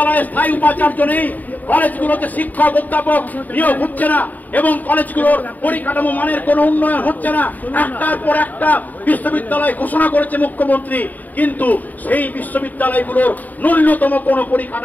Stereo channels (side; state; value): right; late; 0.082 ms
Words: স্থায়ী উপাচার্য নেই। কলেজগুলোতে শিক্ষক অধ্যাপক নিয়োগ হচ্ছে না এবং কলেজগুলোর পরিকাঠামো মানের কোনো উন্নয়ন হচ্ছে না। একটার পর একটা বিশ্ববিদ্যালয় ঘোষণা করেছে মুখ্যমন্ত্রী, কিন্তু সেই বিশ্ববিদ্যালয়গুলোর ন্যূনতম কোনো